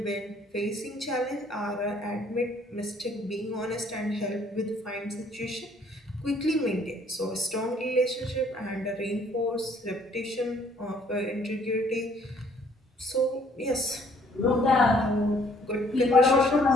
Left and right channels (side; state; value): both; normal; correlation 0.62